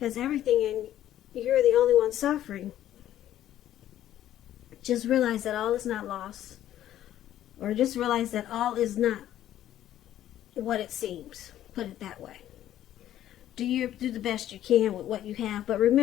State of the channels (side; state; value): right; quieter; 12.2 dB